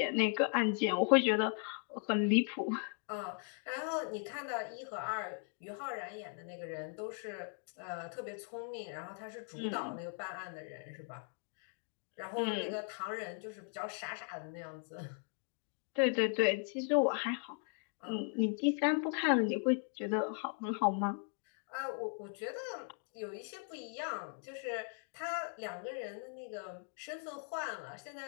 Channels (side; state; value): right; quieter; 39.6 dB